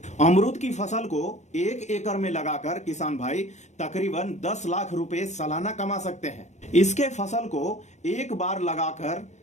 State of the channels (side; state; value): right; late; 0.34 ms